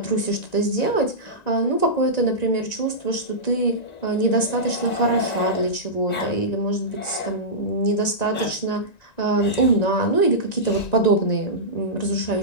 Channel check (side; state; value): right; late; 1.9 ms